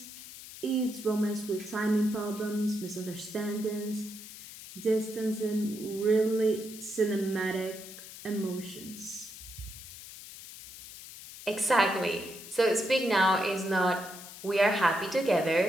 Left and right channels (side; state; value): left; noise; hiss, 14 dB below the sound